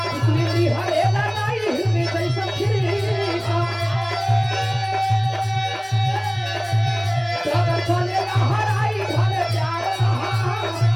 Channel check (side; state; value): both; identical; correlation 1.00